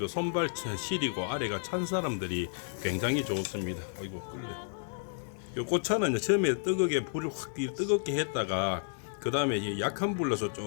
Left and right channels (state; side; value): silent; right; digital silence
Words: 손발 시리고 아래가 찬 사람들이 굉장히 좋습니다. 아이고 꿀려. 이 꽃차는 처음에 뜨겁게 불을 확 뜨겁게 했다가 그 다음에 약한 불로서